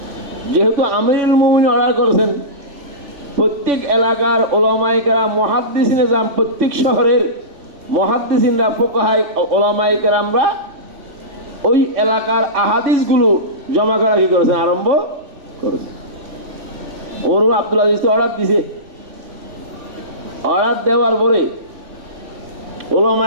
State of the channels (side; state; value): left; late; 3.5 ms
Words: যেহেতু আমিরুল মুমিনিন অর্ডার করেছেন, প্রত্যেক এলাকার উলামায়ে কেরাম মুহাদ্দিসিনে যান, প্রত্যেক শহরের মুহাদ্দিসিনরা ফুকাহায়ে উলামায়ে কেরামরা ওই এলাকার আহাদিসগুলো জমা করা কি করেছেন, আরম্ভ করেছেন। ওমর ইবনে আব্দুল আজিজ অর্ডার দিয়েছে, অর্ডার দেওয়ার পরে